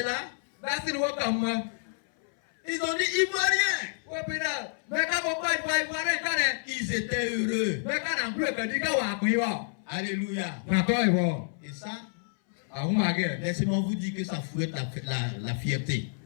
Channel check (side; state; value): right; silent; 59 dB below the other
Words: là, ils ont dit Ivoiriens. Ils étaient heureux. Alléluia. Et ça, laissez-moi vous dire que ça fouette la fierté.